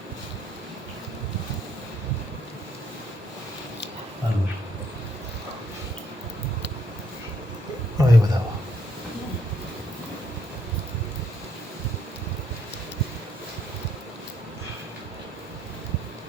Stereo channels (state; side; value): normal; both; correlation 0.72